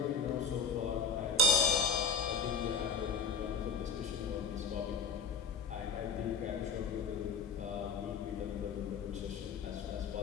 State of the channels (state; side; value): quieter; right; 4.8 dB